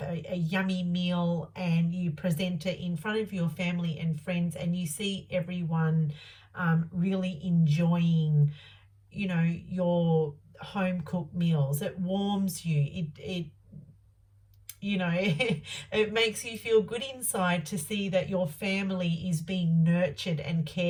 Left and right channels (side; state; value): both; identical; correlation 1.00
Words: a yummy meal and you present it in front of your family and friends and you see everyone really enjoying, your home-cooked meals. It warms you. It it makes you feel good inside to see that your family is being nurtured and